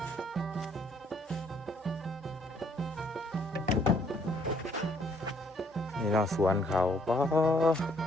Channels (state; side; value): normal; both; correlation 0.66